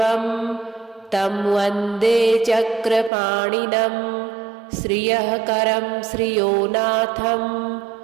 तं वन्दे चक्रपाणिनं श्रियःकरं श्रियोनाथं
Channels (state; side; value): drops out; left; at 3.1 s